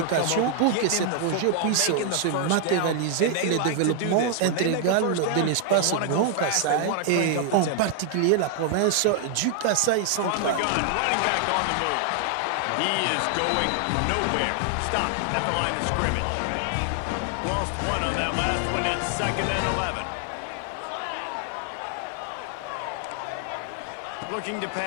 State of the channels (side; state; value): both; different; correlation 0.00